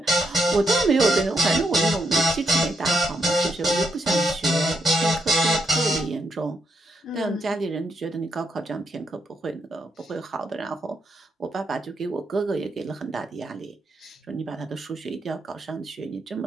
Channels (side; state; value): both; normal; correlation 0.80